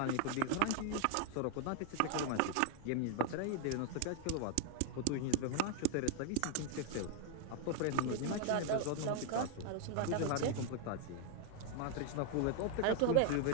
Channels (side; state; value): both; different; correlation 0.00